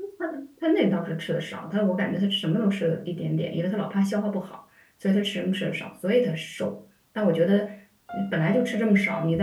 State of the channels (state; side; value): identical; both; correlation 1.00